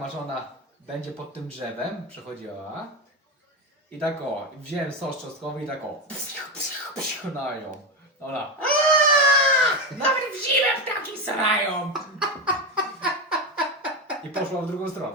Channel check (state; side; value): normal; both; correlation 0.14